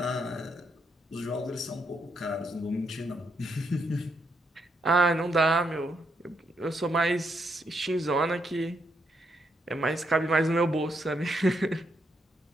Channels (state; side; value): normal; both; correlation 0.77